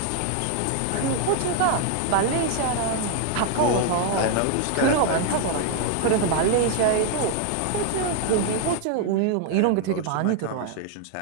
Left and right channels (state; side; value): different; both; correlation 0.00